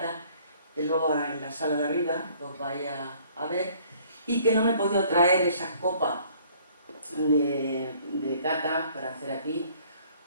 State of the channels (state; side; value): inverted; both; correlation -0.58